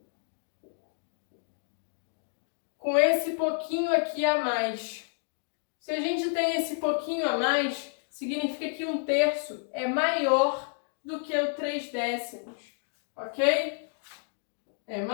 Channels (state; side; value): silent; right; 58 dB below the other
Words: Com esse pouquinho aqui a mais. Se a gente tem esse pouquinho a mais, significa que 1/3 é maior do que o 3 décimos, ok? É